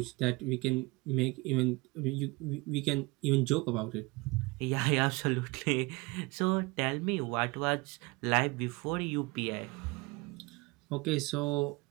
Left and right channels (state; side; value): quieter; left; 24.8 dB